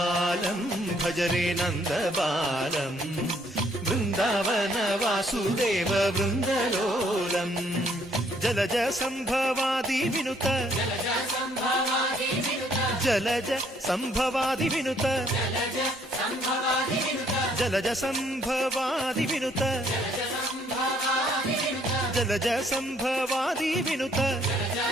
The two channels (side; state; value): both; normal; correlation 0.66